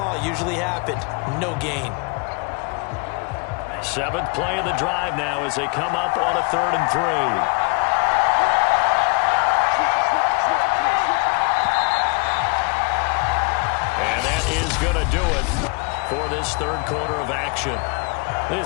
usually happened. No gain. 7th play of the drive now as they come up on a 3rd and 3. And that is going to do it for this 3rd quarter of action.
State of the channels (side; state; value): right; quieter; 31.9 dB